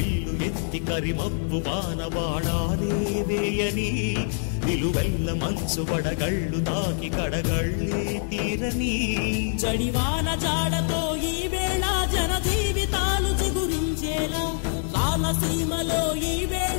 ఎత్తి కరిమబ్బు బాణబాణాలే వేయని నిలువెల్ల మంచు వడగళ్ళు తాకి కడగళ్ళే తీరని జడివాన జాడతో ఈ వేళ జన జీవితాలు చిగురించేలా రామసీమలో ఈ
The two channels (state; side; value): silent; right; digital silence